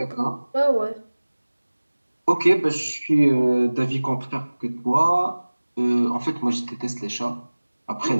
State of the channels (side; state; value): both; inverted; correlation -1.00